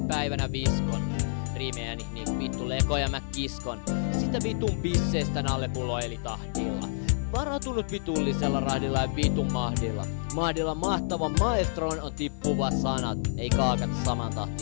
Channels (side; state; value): right; silent; 56 dB below the other